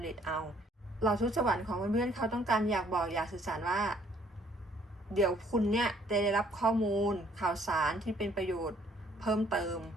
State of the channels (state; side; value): normal; both; correlation 0.62